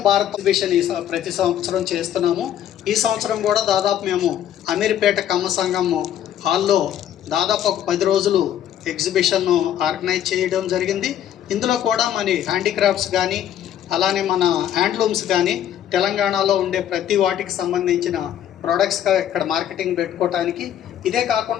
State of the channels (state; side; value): quieter; right; 10.6 dB